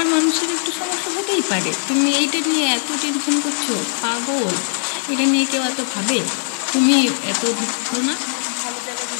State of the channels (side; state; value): right; silent; digital silence